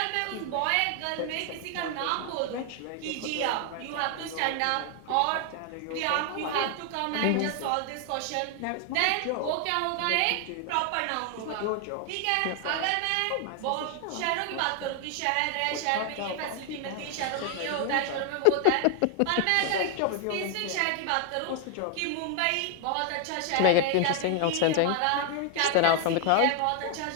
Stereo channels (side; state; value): both; different; correlation 0.00